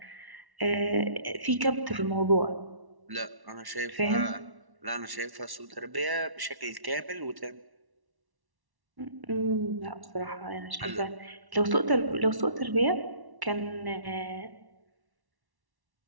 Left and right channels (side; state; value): left; late; 1.1 ms